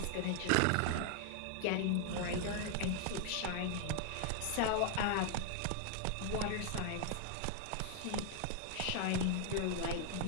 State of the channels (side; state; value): both; different; correlation 0.00